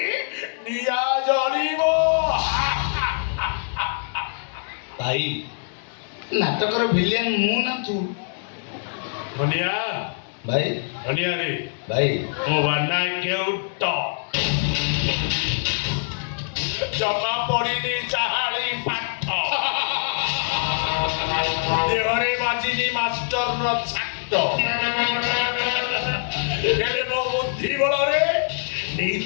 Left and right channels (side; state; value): right; silent; digital silence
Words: নিয়া জ্বলিব। ভাই নাটকর ভিলিয়ান মু না তু? ধনিয়া ভাই ধনিয়া রে ভাই ମୋ ବାନା କେଉଟ ଜମା ପଡ଼ିନି ଚାହାଳି ପାଠ ଦେହରେ ବାଜିନି ମାଷ୍ଟରର ଛାଟ ହେଲେ ମୋ ବୁଦ୍ଧି ବଳରେ